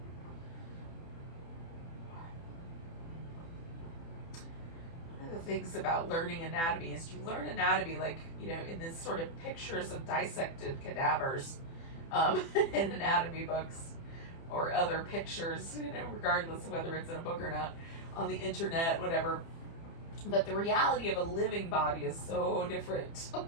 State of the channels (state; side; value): late; right; 30 ms